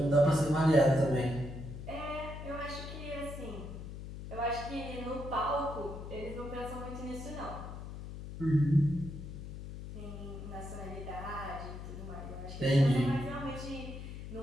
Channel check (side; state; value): left; noise; hum, 9 dB below the sound